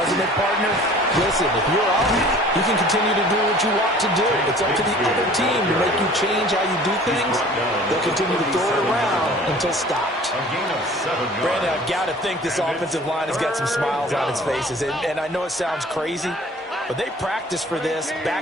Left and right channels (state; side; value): normal; both; correlation 0.48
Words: it, partner? Listen, if you're up, you can continue to do what you want to do. It's up to the other team to make you change how you do things. They'll continue to throw it around until stopped. a gain of 7 yards. Brandon, I've got to think this offensive line has got some smiles on its faces. And I know it sounds crazy, but they practiced for this